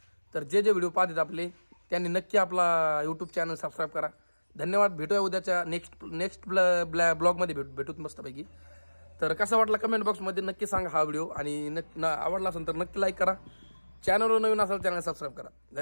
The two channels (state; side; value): inverted; both; correlation -1.00